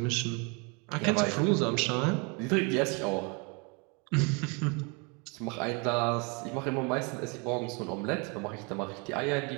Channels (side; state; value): left; quieter; 31.9 dB